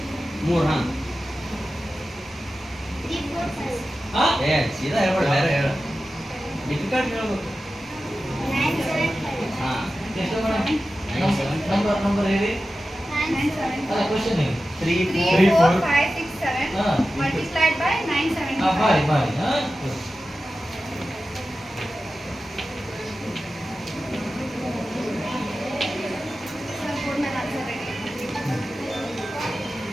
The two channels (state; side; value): normal; both; correlation 0.94